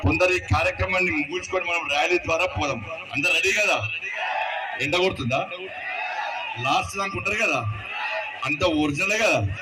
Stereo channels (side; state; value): both; identical; correlation 1.00